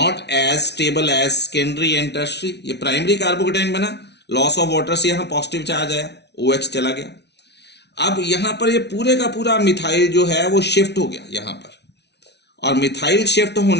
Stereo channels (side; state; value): right; late; 0.50 ms